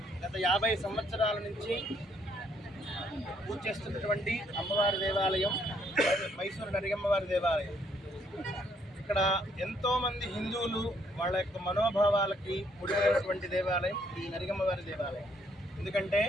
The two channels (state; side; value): normal; both; correlation 0.69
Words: గత 50 సంవత్సరాల నుంచి పూజ చేస్తున్నటువంటి అమ్మవారి దేవాలయం మైసూరు నరిగమ్మవారి దేవాలయం. ఇక్కడ ఎంతోమంది హిందువులు వాళ్ళ యొక్క మనోభావాలకి ముడిపడినటువంటి దేవాలయం ఈ నరిగమ్మవారి దేవాలయం. ఎందుకంటే